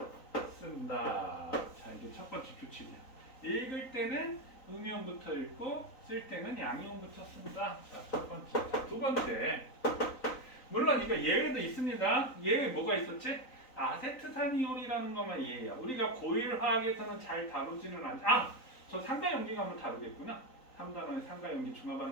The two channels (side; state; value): right; late; 3.9 ms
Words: 쓴다. 자, 이게 첫 번째 규칙이야. 읽을 때는 음이온부터 읽고 쓸 때는 양이온부터 쓴다. 자, 첫 번째. 자, 두 번째. 물론 이거 예외도 있습니다. 예외 뭐가 있었지? 아세트산이온이라는 것만 예외야. 우리가 고일 화학에서는 잘 다루지는 않지. 저 상가연기 가면 다루겠구나. 3단원에 상가연기